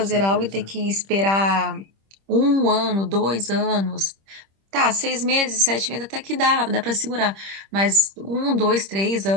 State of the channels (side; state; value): left; late; 26 ms